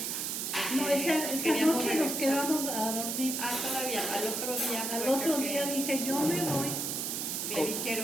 No, esa noche nos quedamos a dormir. Ah, todavía, al otro día. Al otro día dije, yo me voy. Le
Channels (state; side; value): noise; right; hiss, 2 dB below the sound